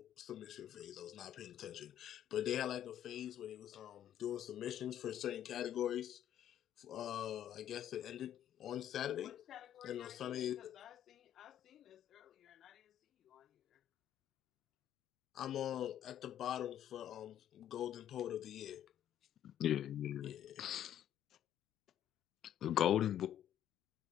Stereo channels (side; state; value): right; quieter; 10.9 dB